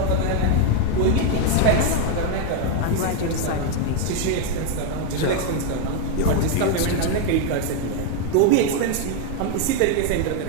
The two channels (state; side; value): different; both; correlation 0.01